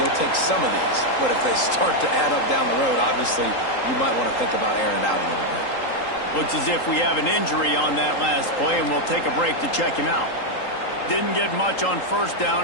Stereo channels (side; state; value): right; late; 3.8 ms